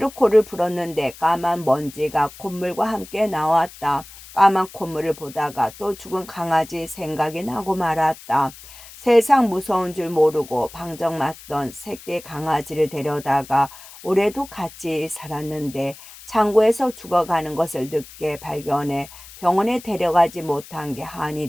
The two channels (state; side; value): noise; left; hiss, 18 dB below the sound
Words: 코를 풀었는데 까만 먼지가 콧물과 함께 나왔다. 까만 콧물을 보다가 또 죽은 강아지 생각이 나고 말았다. 세상 무서운 줄 모르고 방정맞던 새끼 강아지를 데려다가 올해도 같이 살았는데 창고에서 죽어가는 것을 늦게 발견해 병원에 데려가지 못한 게 한이